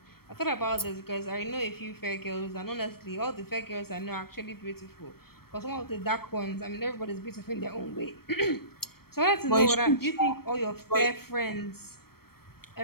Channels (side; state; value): right; late; 0.94 ms